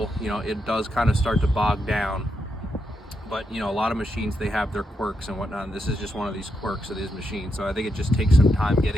It does kind of start to bog down. But a lot of machines, they have their quirks and whatnot, and this is just one of these quirks of these machines. So I think it just takes some time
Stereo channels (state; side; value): normal; both; correlation 0.83